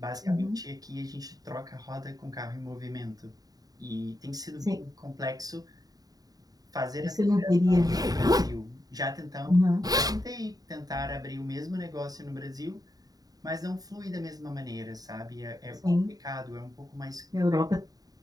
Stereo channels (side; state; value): left; late; 0.18 ms